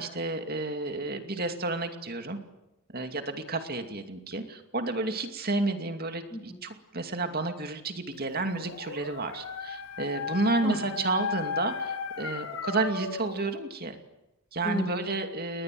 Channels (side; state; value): both; normal; correlation 0.14